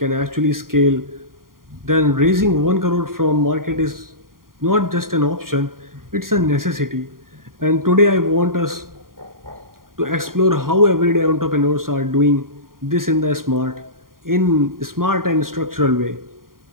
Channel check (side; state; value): left; late; 0.91 ms